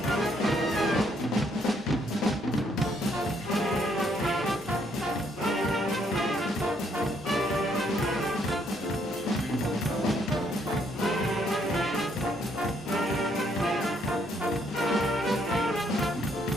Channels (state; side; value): normal; both; correlation 0.70